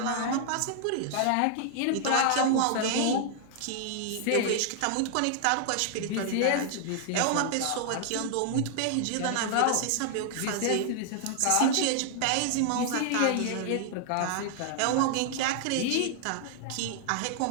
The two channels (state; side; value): different; both; correlation 0.00